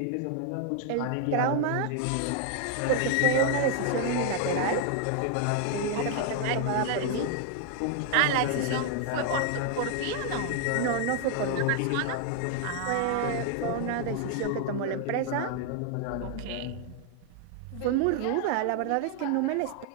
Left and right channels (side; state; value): both; different; correlation 0.00